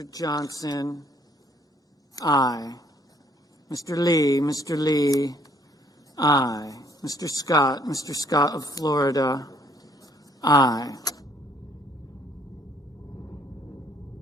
Johnson, aye. Mr. Lee, aye. Mr. Scott of Florida, aye.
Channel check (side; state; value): both; normal; correlation 0.64